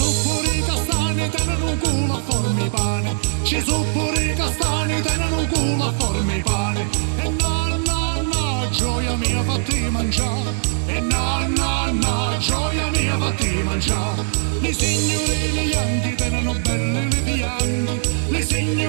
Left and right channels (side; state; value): left; silent; digital silence